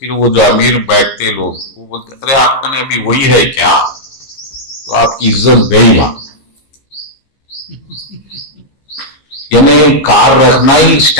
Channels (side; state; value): right; late; 15 ms